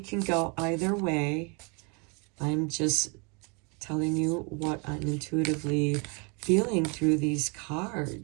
go either way. I'm just telling you what I'm intuitively feeling through these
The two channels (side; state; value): left; quieter; 32.9 dB